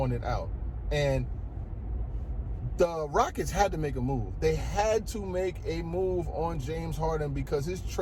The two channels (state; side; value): identical; both; correlation 1.00